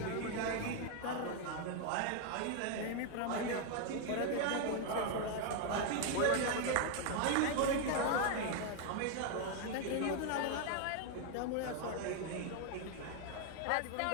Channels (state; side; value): different; both; correlation 0.00